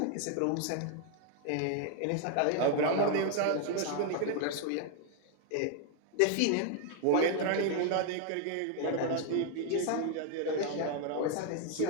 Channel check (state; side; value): different; both; correlation 0.00